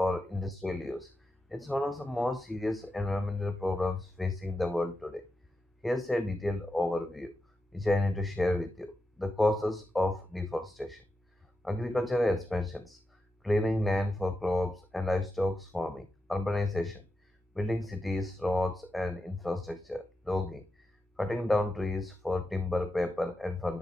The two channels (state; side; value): normal; both; correlation 0.88